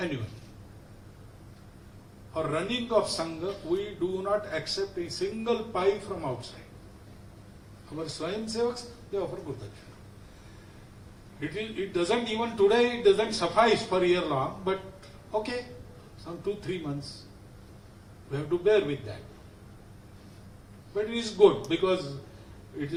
For running of Sangha, we do not accept a single pie from outside. Our Swayamsevaks, they offer Guru Dakshina. It doesn't even today, it doesn't suffice for a year long, but okay, some 2-3 months, we have to bear with that. But it is good because it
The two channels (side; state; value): both; identical; correlation 1.00